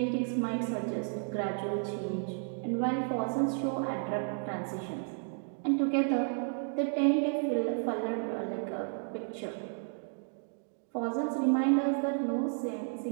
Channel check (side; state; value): left; silent; 56 dB below the other